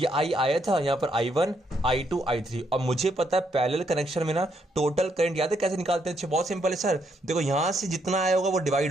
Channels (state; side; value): normal; both; correlation 0.75